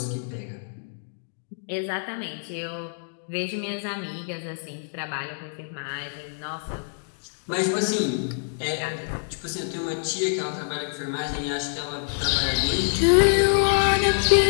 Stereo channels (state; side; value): silent; right; digital silence